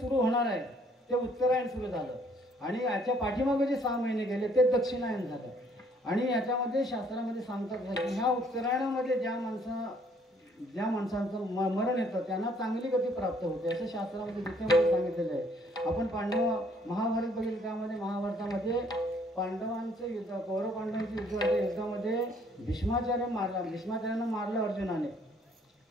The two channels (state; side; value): normal; both; correlation 0.63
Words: होणार आहे ते उत्तरायण सुरू झालं आणि याच्या पाठीमागे जे 6 महिने गेले ते दक्षिणायन झालं. आणि याच्यामध्ये शास्त्रामध्ये सांगतात की ह्या उत्तरायणामध्ये ज्या माणसांचं मरण येतं त्यांना चांगली गती प्राप्त होते असं शास्त्रामध्ये गीतेमध्ये सांगितलेलं आहे. आपण महाभारत बघितलं, त्यामध्ये महाभारतामध्ये पांडवांचं युद्ध, कौरव पांडवांचं युद्ध होतं. युद्धामध्ये भीष्माचार्यांना मारलं अर्जुनाने.